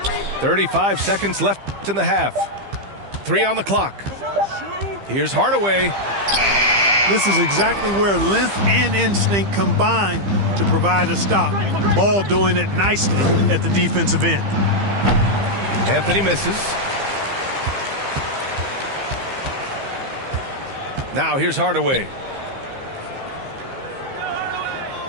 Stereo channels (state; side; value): late; left; 15 ms